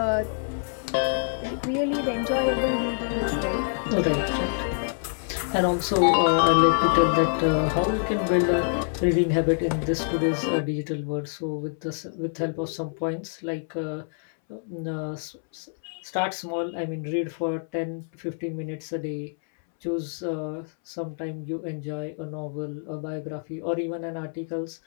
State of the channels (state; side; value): silent; right; 61 dB below the other